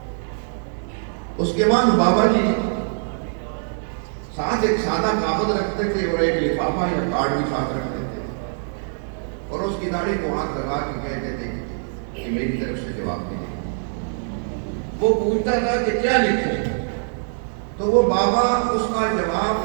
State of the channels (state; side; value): silent; left; digital silence